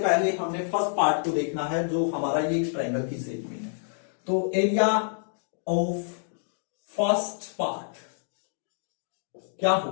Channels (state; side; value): silent; right; digital silence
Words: पहले हमने फर्स्ट पार्ट को देखना है जो हमारा ये ट्रायंगल की शेप में है। तो एरिया ऑफ फर्स्ट पार्ट क्या